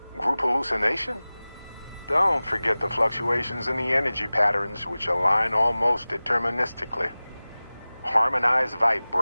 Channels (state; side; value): inverted; both; correlation -0.98